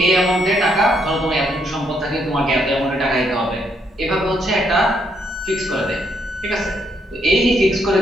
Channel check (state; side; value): normal; both; correlation 0.74